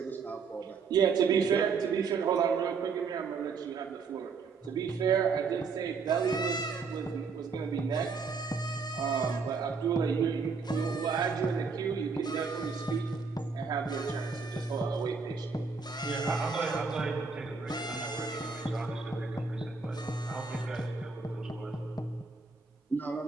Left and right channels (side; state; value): left; quieter; 5.0 dB